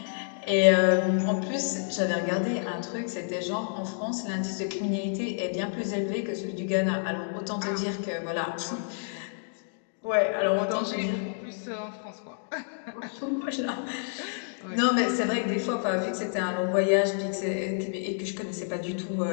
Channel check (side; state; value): right; silent; digital silence